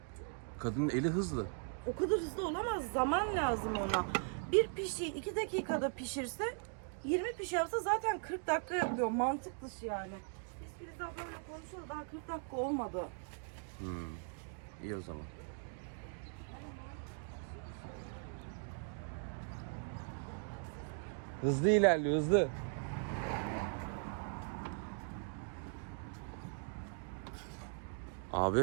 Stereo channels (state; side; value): silent; left; 52 dB below the other